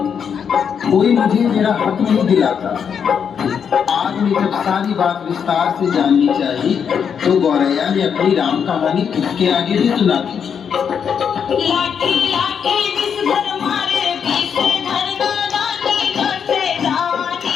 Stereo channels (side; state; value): right; quieter; 7.3 dB